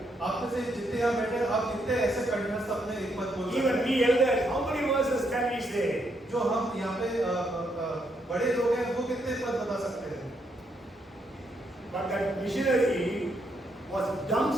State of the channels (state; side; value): normal; both; correlation 0.76